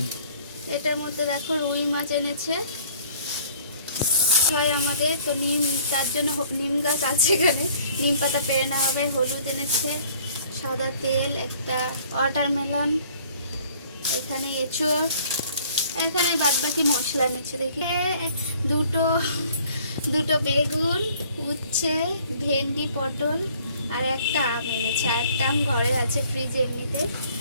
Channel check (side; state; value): both; inverted; correlation -0.56